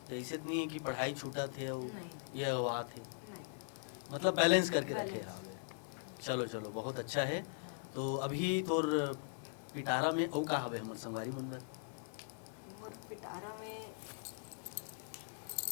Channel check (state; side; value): silent; right; digital silence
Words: ऐसे तो नहीं है कि पढ़ाई छूटा थे और नहीं। ये अगवा थे, नहीं मतलब बैलेंस करके रखे बैलेंस। हैं। चलो चलो बहुत अच्छा है। हाँ। तो अभी तोर पिटारा में औ का हवे हमर संगवारी मन बर? मोर पिटारा में